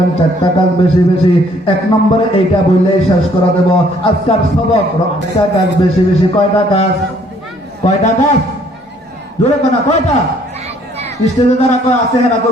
4টা কাজ বেশি বেশি। 1 নম্বরে এইটা বললেই শেষ করে দেব আজকের সবক। 4টা কাজ বেশি বেশি। কয়টা কাজ? কয়টা কাজ? জোরে কোনা কয়টা? স্টেজে যারা কয় আছে হেরা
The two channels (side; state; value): both; normal; correlation 0.62